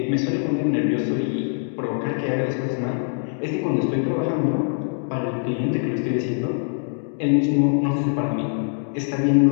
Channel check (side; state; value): right; silent; digital silence